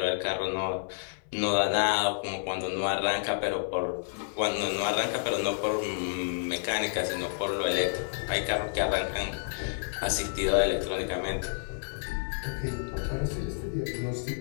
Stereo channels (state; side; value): silent; right; 55 dB below the other